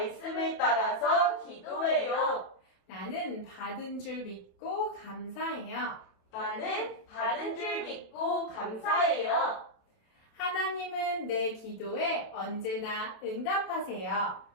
따라서 기도해요. 나는 받은 줄 믿고 감사해요. 나는 받은 줄 믿고 감사해요. 하나님은 내 기도에 언제나 응답하세요.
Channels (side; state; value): right; late; 28 ms